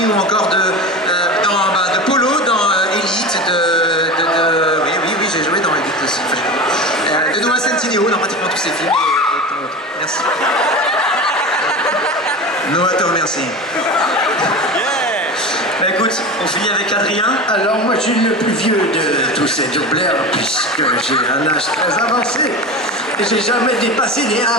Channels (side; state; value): both; normal; correlation 0.28